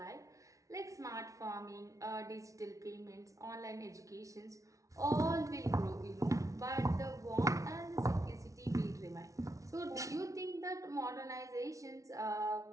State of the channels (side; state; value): left; late; 0.16 ms